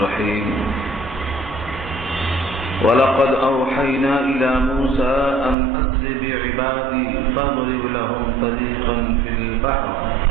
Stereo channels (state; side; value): drops out; left; at 5.6 s